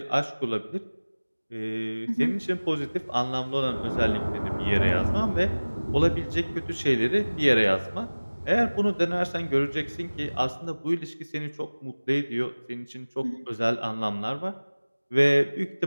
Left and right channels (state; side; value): inverted; both; correlation -1.00